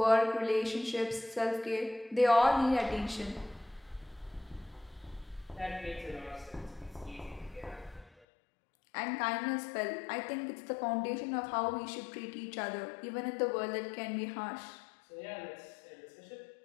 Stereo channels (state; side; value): drops out; right; at 8.1 s